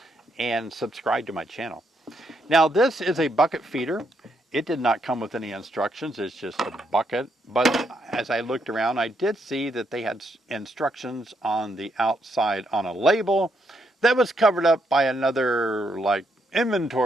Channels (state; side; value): normal; both; correlation 0.77